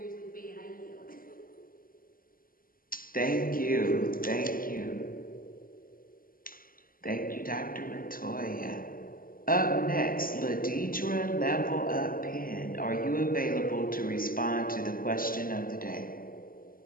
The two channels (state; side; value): late; right; 0.41 ms